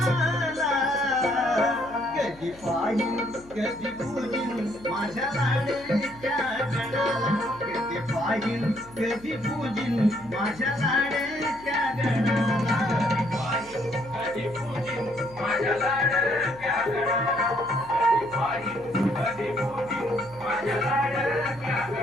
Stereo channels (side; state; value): left; noise; hum, 22 dB below the sound